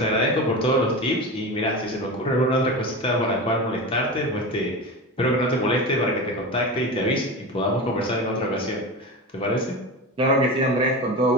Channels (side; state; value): both; normal; correlation 0.26